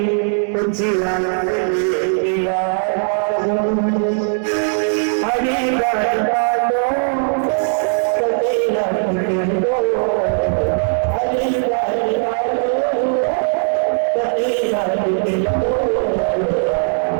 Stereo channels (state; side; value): silent; left; 57 dB below the other